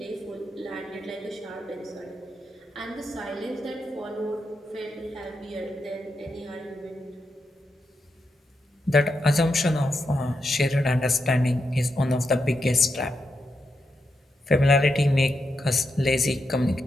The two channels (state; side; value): normal; both; correlation 0.84